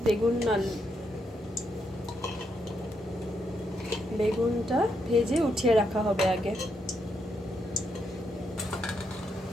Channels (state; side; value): normal; both; correlation 0.79